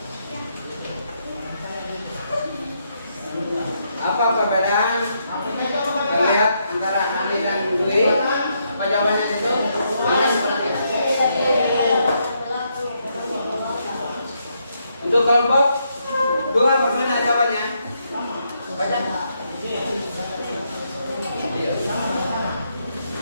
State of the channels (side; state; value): both; inverted; correlation -0.78